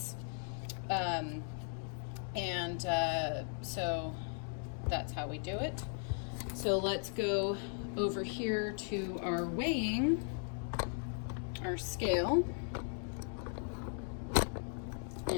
So that's how we do it. So let's go over here to our weighing, our scale,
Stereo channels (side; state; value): right; silent; 53 dB below the other